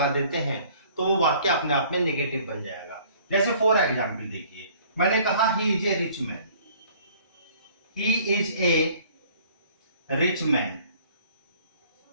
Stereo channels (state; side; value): inverted; both; correlation -0.55